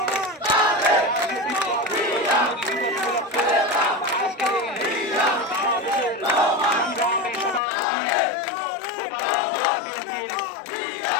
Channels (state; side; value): drops out; right; at 7.6 s